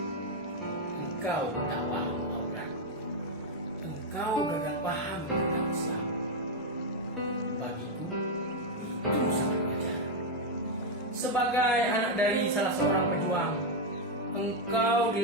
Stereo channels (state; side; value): normal; both; correlation 0.02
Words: Engkau tak paham aurat. Engkau gagal paham tentang Islam. Bagiku, itu sangat wajar. Sebagai anak dari salah seorang pejuang, engkau